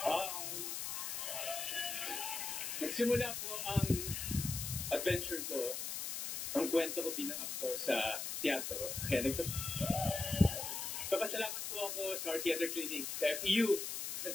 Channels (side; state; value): left; noise; hiss, 3 dB below the sound